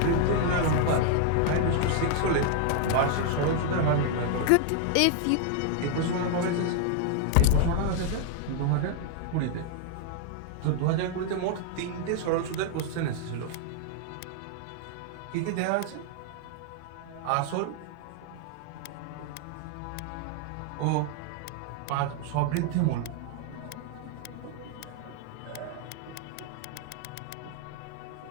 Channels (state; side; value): different; both; correlation 0.00